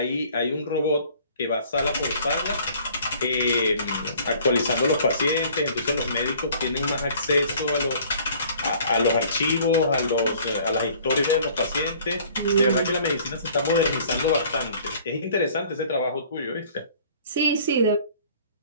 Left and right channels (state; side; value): inverted; both; correlation -0.53